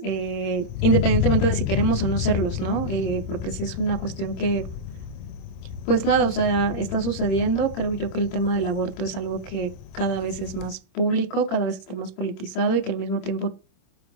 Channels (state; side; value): late; right; 26 ms